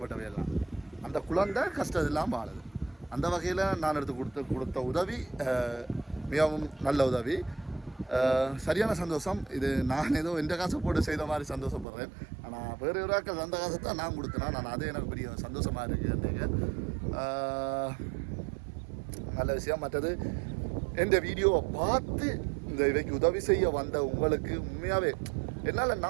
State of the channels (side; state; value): left; drops out; at 11.9 s